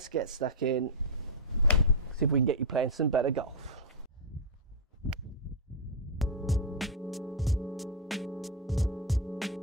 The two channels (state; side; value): normal; both; correlation -0.03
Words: get stuck in, see if we can get you playing some better golf.